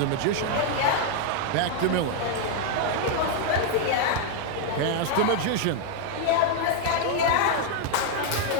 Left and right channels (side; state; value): both; different; correlation 0.00